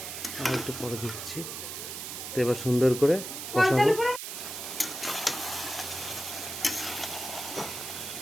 আর একটু পরে দিচ্ছি। তো এবার সুন্দর করে কষাবো।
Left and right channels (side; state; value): right; noise; hiss, 7 dB below the sound